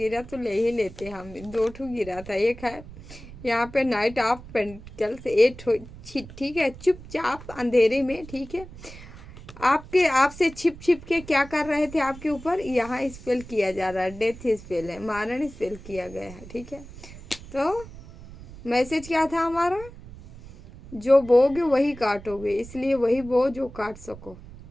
तो ले ही लेते हम। 2 ठू गिरा था, एक है यहाँ पे नाइट ऑफ पेंटिकल्स 8, ठीक है, चुपचाप अंधेरे में, ठीक है, आपसे छिप छिप के क्या कर रहे थे आपके ऊपर, यहाँ स्पेल किया जा रहा है, डेथ स्पेल है, मारण स्पेल किया गया है, ठीक है। तो मैसेज क्या था हमारा, जो बोगे वही काटोगे, इसलिए वही बो जो काट सको।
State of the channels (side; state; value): right; noise; rumble, 16 dB below the sound